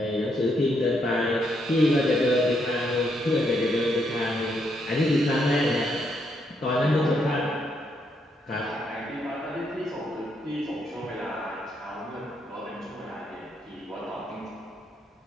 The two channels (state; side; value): normal; both; correlation 0.76